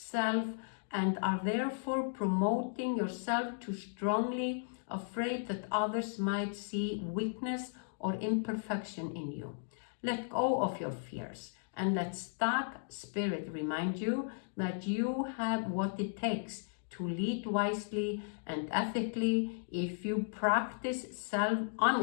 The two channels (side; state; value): right; silent; digital silence